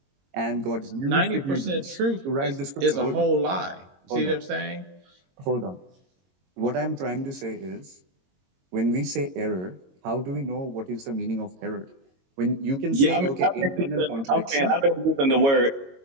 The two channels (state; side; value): late; left; 22 ms